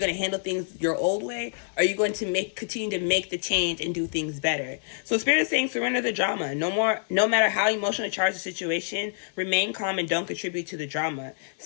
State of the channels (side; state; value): right; silent; digital silence